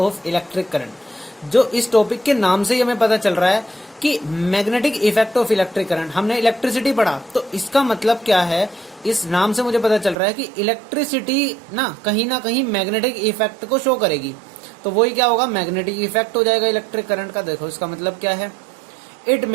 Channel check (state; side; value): drops out; left; at 10.2 s